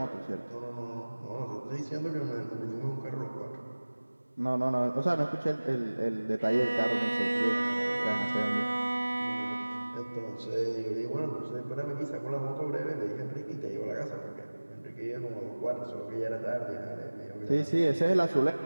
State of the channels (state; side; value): inverted; both; correlation -1.00